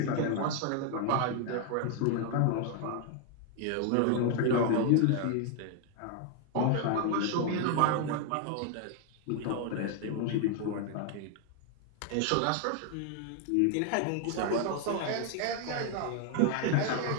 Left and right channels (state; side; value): different; both; correlation 0.00